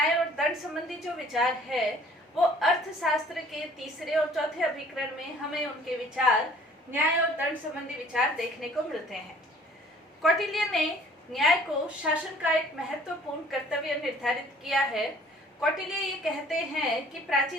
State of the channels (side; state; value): both; normal; correlation 0.54